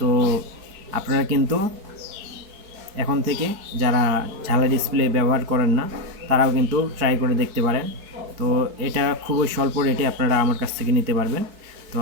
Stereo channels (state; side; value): late; left; 4.7 ms